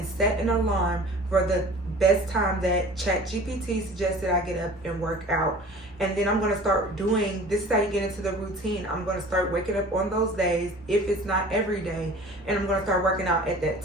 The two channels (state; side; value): normal; both; correlation 0.43